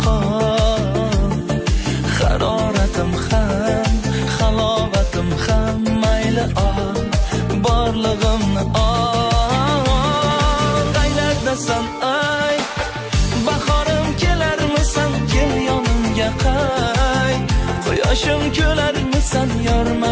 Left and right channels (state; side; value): identical; both; correlation 1.00